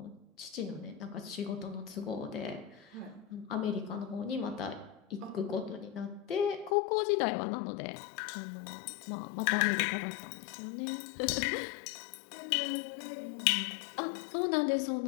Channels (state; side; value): drops out; right; at 6.8 s